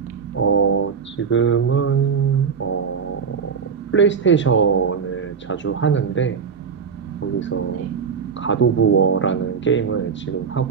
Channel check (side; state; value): left; quieter; 6.1 dB